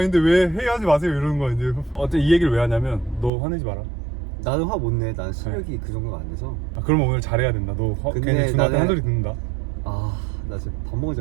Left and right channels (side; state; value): left; drops out; at 3.3 s